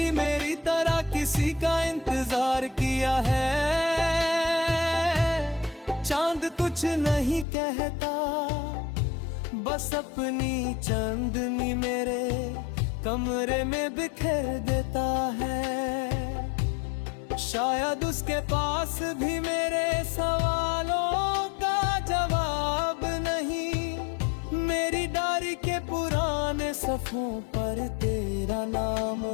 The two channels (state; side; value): drops out; right; at 7.5 s